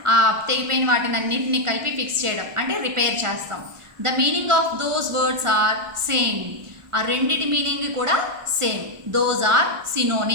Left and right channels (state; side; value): late; left; 1.4 ms